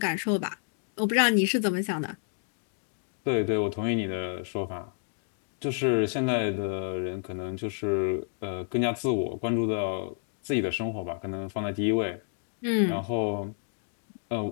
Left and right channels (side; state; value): right; silent; 58 dB below the other